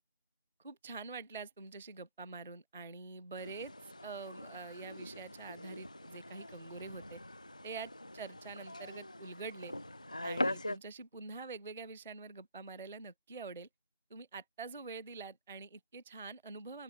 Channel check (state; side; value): inverted; both; correlation -0.67